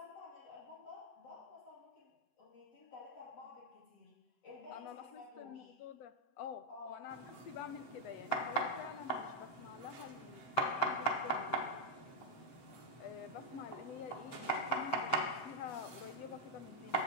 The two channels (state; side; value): late; right; 7.8 ms